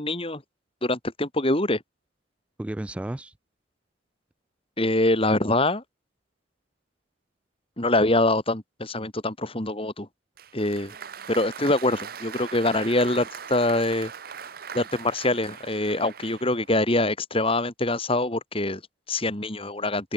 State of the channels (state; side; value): normal; both; correlation 0.34